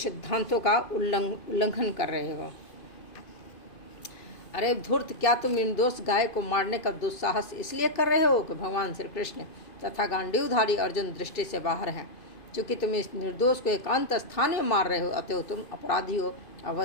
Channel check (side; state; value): right; late; 2.5 ms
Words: का उल्लंघन कर रहे हो। अरे धूर्त, क्या तुम निर्दोष गाय को मारने का दुस्साहस इसलिए कर रहे हो कि भगवान श्री कृष्ण तथा गांडीवधारी अर्जुन दृष्टि से बाहर हैं? चूँकि तुम इस निर्दोष को एकांत स्थान में मार रहे हो, अतएव तुम अपराधी हो,